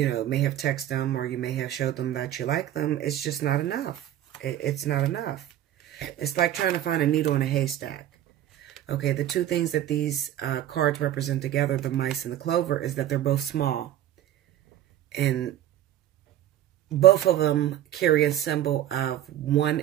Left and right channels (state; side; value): quieter; left; 12.2 dB